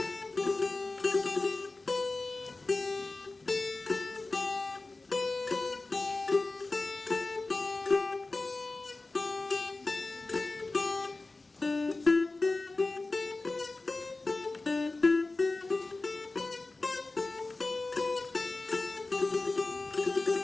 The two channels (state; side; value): quieter; right; 3.3 dB